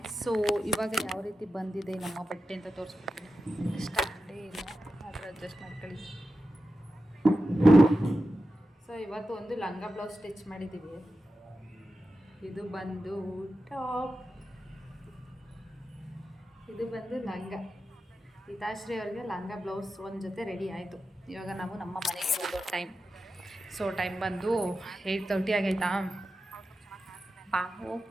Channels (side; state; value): both; normal; correlation 0.91